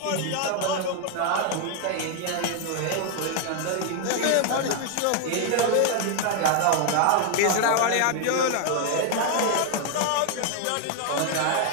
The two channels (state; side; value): different; both; correlation 0.00